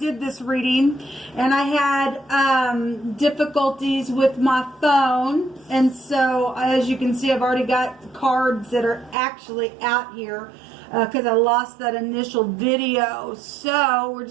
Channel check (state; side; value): drops out; left; at 9.2 s